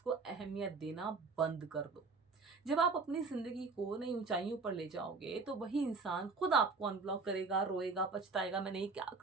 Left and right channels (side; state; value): left; quieter; 4.2 dB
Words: अहमियत देना बंद कर दो। जब आप अपनी ज़िंदगी को नई ऊँचाइयों पर ले जाओगे, तो वही इंसान खुद आपको अनब्लॉक करेगा, रोएगा, पछताएगा, मैंने ये क्या